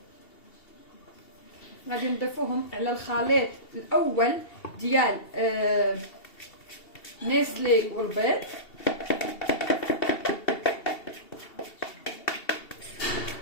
على الخليط الاول ديال نيسلي والبيض.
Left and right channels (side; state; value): right; late; 2.7 ms